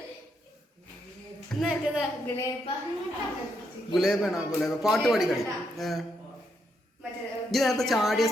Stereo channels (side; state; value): both; normal; correlation 0.78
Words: ഗുലേബാണോ? ഗുലേബ പാട്ട് പാടി കളി. ഇത് നേരത്തെ ചാടിയ